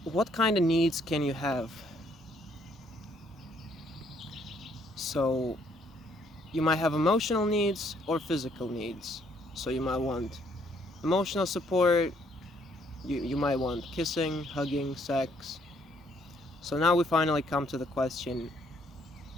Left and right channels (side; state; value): both; normal; correlation 0.67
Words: what kind of needs can you have? So, you might have emotional needs or physical needs. So, you might want emotional support, you might want kissing, hugging, sex. So, now we finally come to the question,